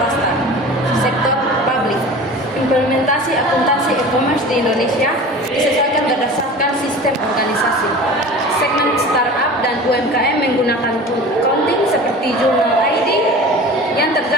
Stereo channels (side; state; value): both; normal; correlation 0.37